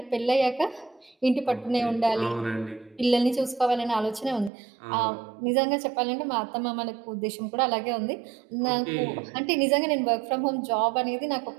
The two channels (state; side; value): drops out; left; at 4.5 s